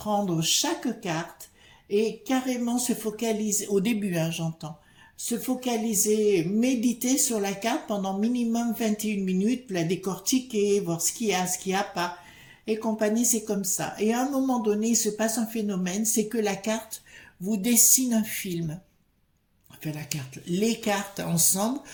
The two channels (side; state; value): both; identical; correlation 1.00